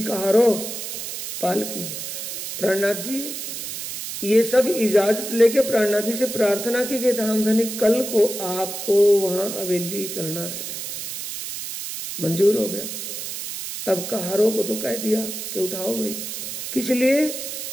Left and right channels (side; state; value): right; noise; hiss, 6 dB below the sound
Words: कहारो पालकी, प्राणनाथ जी ये सब इजाजत लेके प्राणनाथ जी से प्रार्थना की कि धामधनी कल को आपको वहां हवेली चलना है। मंजूर हो गया। अब कहारों को तो कह दिया कि उठाओ भाई, किस लिए